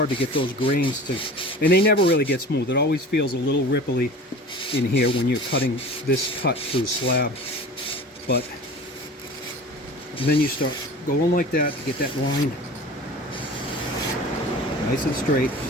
to get those grains to, and they never really get smooth. It always feels a little ripply in here when you're cutting this cut through slab. But then you start going like that to get that line nice and straight.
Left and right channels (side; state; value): both; normal; correlation 0.38